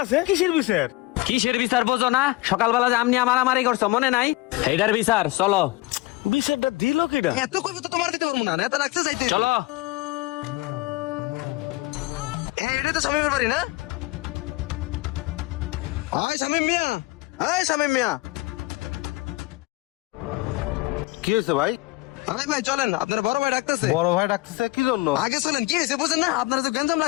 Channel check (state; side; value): quieter; right; 20.6 dB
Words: আছে? কিসের বিচার? কিসের বিচার বোঝো না? সকালবেলা যে আম নিয়ে মারামারি করছো মনে নাই? এইটার বিচার চলো। বিচারটা দিল কেডা? এত কইবো তো তোমার দিতে পারবো না, নেতা রাখতে চাইতে। চলো। এটা তো সবাই ব্যাপারই না। ওই শামিম মিয়া, এই শামিম মিয়া। কি হয়েছে ভাই? আরে ভাই চলেন, আপনার বড় ভাই ডাকতেছে। বড় ভাই ডাকতেছে কি জন্য? আগে চলেন, কি হয়েছে বুঝেন না? আপনারা যে গঞ্জাম